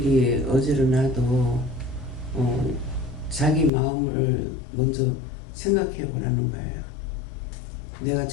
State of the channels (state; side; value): drops out; right; at 3.7 s